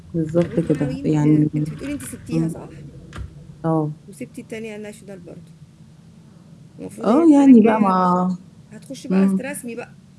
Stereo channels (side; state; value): both; identical; correlation 1.00